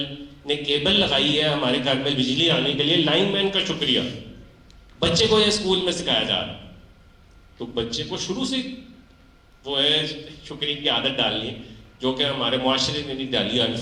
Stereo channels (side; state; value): both; identical; correlation 1.00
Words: نے کیبل لگائی ہے ہمارے گھر میں بجلی آنے کے لیے, لائن مین کا شکریہ بچے کو یہ اسکول میں سکھایا جا رہا ہے. تو بچے کو شروع سے وہ ہے شکریہ کی عادت ڈالنی ہے جو کہ ہمارے معاشرے میں نہیں ڈالی ہے